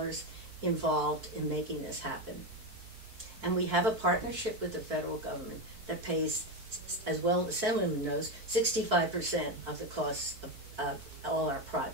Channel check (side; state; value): left; late; 4.6 ms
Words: involved in making this happen. And we have a partnership with the federal government that pays, as well as the Assemblyman knows, 65% of the costs of all our